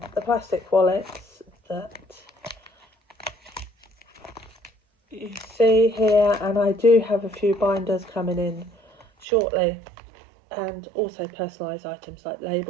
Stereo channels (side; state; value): left; drops out; at 9.2 s